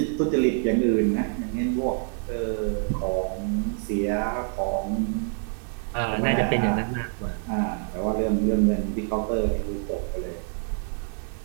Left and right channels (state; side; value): silent; left; 57 dB below the other